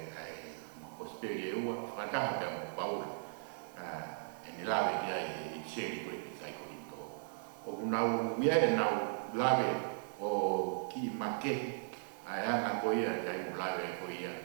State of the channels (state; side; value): silent; left; digital silence